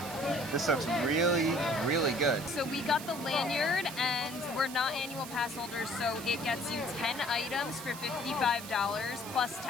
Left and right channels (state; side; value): noise; right; hiss, 12 dB below the sound